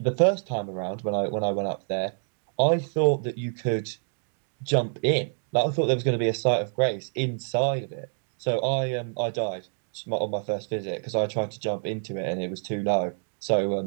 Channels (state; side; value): silent; left; 58 dB below the other